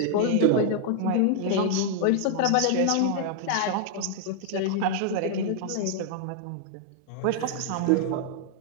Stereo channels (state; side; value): different; both; correlation 0.00